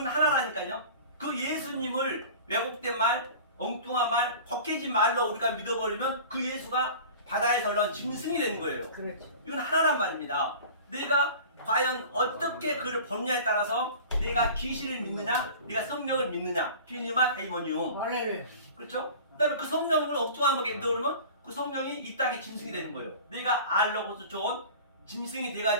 하나라니까요. 그 예수님을 왜곡된 말, 엉뚱한 말, 걷게진 말로 우리가 믿어버리면 그 예수가 바다에서 올라온 짐승이 되는 거예요. 그렇죠. 이건 하나란 말입니다. 내가 과연 어떻게 그를 보느냐에 따라서 내가 귀신을 믿느냐, 내가 성령을 믿느냐, 피니마 데이모니움. 할렐루야. 그렇죠? 그다음에 그 성령을 엉뚱하게 믿어버리면 그 성령이 이 땅의 짐승이 되는 거예요. 내가 알로고스 좋은 짐승이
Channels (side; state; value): both; inverted; correlation -0.40